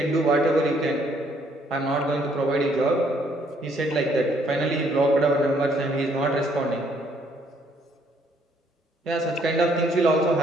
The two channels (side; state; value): both; normal; correlation 0.67